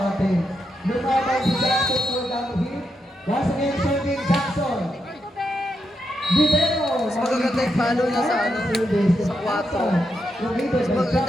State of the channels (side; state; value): both; normal; correlation 0.84